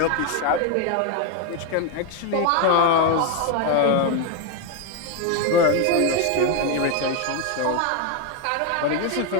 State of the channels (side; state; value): both; different; correlation 0.01